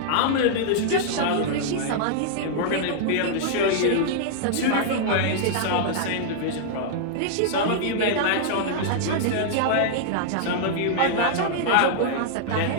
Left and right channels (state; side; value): different; both; correlation -0.01